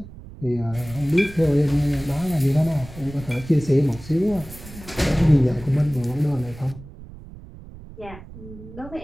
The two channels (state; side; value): noise; right; rumble, 16 dB below the sound